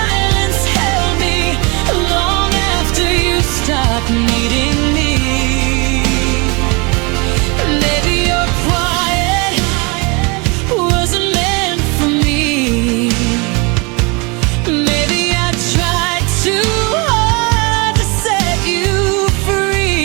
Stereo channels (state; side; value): quieter; left; 29.2 dB